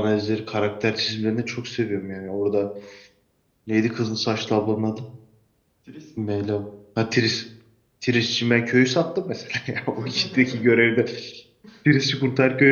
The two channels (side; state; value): both; identical; correlation 1.00